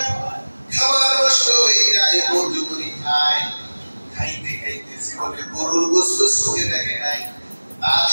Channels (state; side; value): inverted; both; correlation -1.00